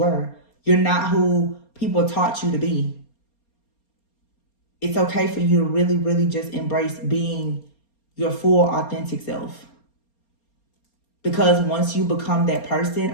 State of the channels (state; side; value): late; right; 4.3 ms